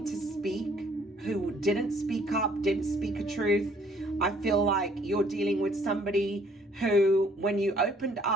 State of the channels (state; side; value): normal; both; correlation 0.61